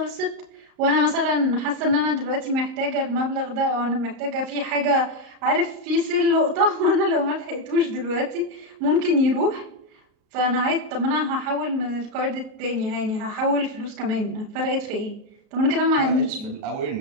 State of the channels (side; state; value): left; late; 38 ms